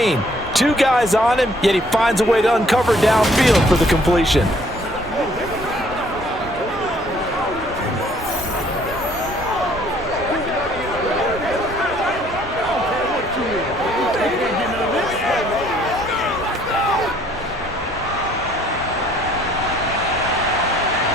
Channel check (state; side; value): normal; both; correlation 0.61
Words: 2 guys on him, yet he finds a way to uncover downfield for the completion.